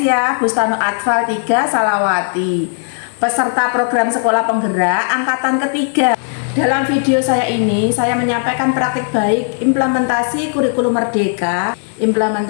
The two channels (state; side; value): silent; right; 69 dB below the other